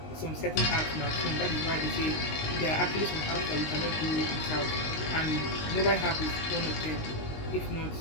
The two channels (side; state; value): right; late; 19 ms